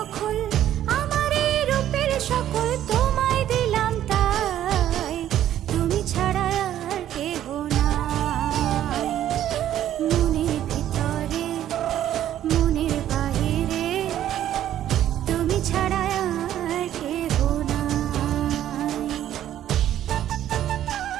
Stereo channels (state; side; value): quieter; left; 11.7 dB